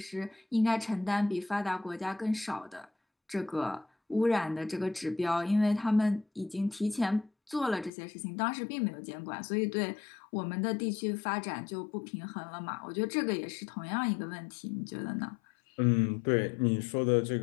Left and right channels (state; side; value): drops out; right; at 7.9 s